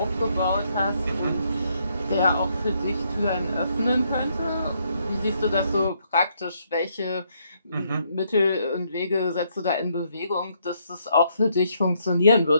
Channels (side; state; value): both; inverted; correlation -0.73